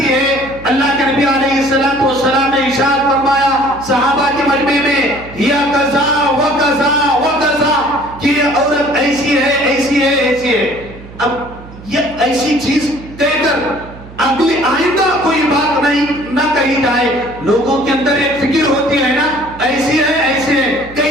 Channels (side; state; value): right; noise; hum, 17 dB below the sound